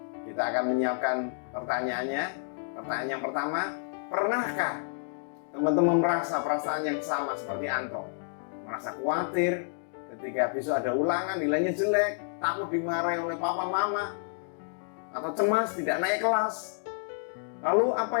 Kita akan menyiapkan pertanyaannya. Pertanyaan yang pertama, pernahkah teman-teman merasa perasaan yang sama seperti Anto? Merasa khawatir ketika besok ada ulangan nilainya jelek, takut dimarahi oleh papa mama, atau cemas tidak naik kelas. Lalu apa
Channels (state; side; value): silent; right; digital silence